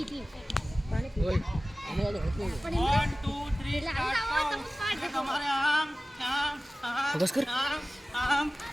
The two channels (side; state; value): both; normal; correlation 0.97